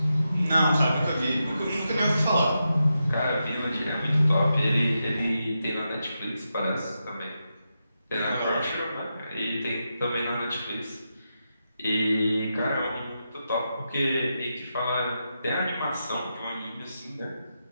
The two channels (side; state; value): both; inverted; correlation -0.87